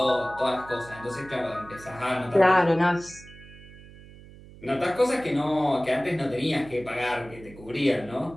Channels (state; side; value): noise; right; hum, 19 dB below the sound